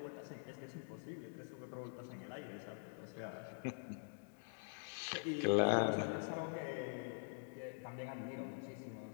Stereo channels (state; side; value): silent; right; digital silence